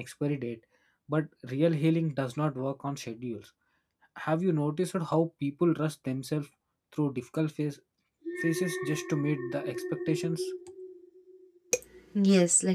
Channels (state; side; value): identical; both; correlation 1.00